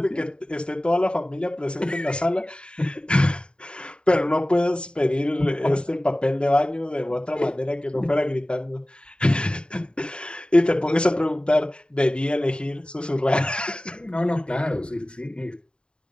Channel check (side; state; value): right; late; 0.051 ms